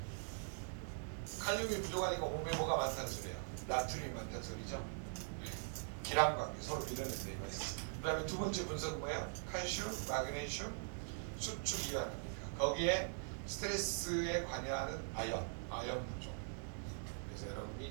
칼륨이 부족하니까 몸에 뭐가 많다는 소리예요? 나트륨이 많다는 소리죠? 네. 기람 관계. 서로 밀어낸다 이거는. 그 다음에 두 번째 분석은 뭐야? 칼슘, 마그네슘, 수축 이완입니까? 거기에 스트레스에 관여하는 아연 부족. 그래서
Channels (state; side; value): silent; left; digital silence